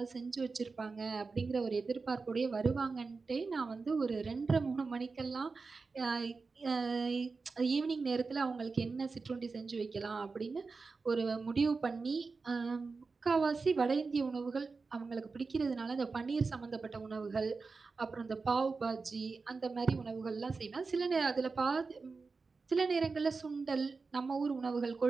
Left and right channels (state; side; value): quieter; left; 4.3 dB